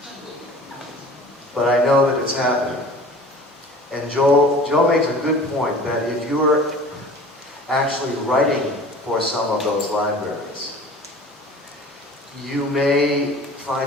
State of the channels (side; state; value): both; normal; correlation 0.43